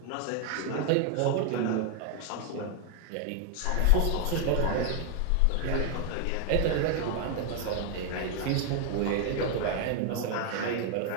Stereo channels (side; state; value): both; different; correlation 0.00